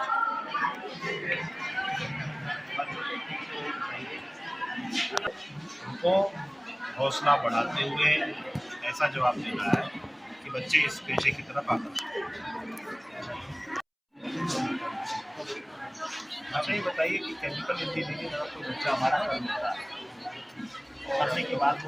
उनको हौसला बढ़ाते हुए ऐसा जवाब देना है कि बच्चे इस पेशे की तरफ आकर्षित। अच्छा ये बताइए कि केमिकल इंजीनियरिंग अगर कोई बच्चा हमारा करने के बाद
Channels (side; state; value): both; identical; correlation 1.00